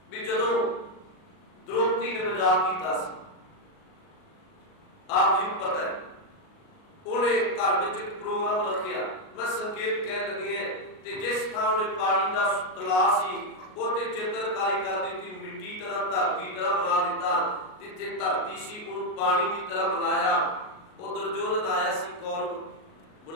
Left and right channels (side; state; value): right; late; 38 ms